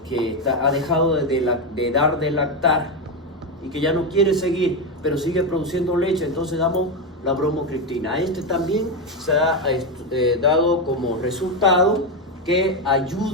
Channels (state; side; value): normal; both; correlation 0.09